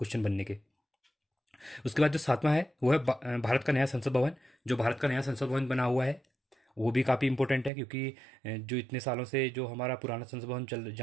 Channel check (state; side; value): drops out; left; at 7.7 s